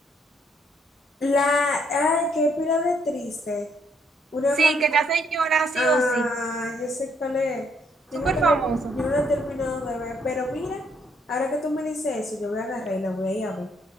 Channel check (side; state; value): both; normal; correlation 0.70